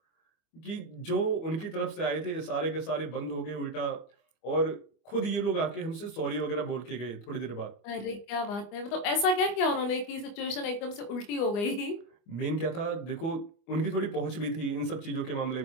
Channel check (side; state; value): right; late; 25 ms